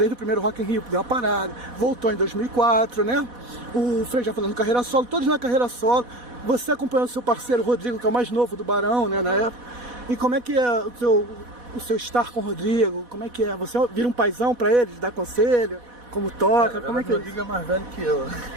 primeiro Rock in Rio, deu uma parada, voltou em 2004, né? O Frei já falando carreira solo, todos na carreira solo. Você acompanhou o seu parceiro Rodrigo, que é o mais novo do Barão, né, na época. E como é que é o seu estar com o Rodrigo? Como é que é? Você vira um paizão pra eles, dá conselho? Como toca? Como é que é? O Rodrigo é mais velho que eu.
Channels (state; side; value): late; left; 4.1 ms